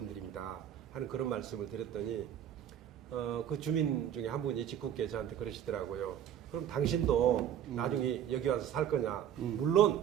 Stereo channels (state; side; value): quieter; left; 10.0 dB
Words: 하는 그런 말씀을 드렸더니 그 주민 중에 한 분이 직국계 저한테 그러시더라고요. 그럼 당신도 나중에 여기 와서 살 거냐? 물론